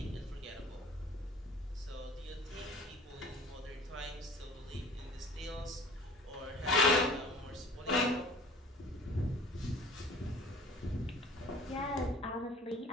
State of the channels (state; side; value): normal; both; correlation 0.46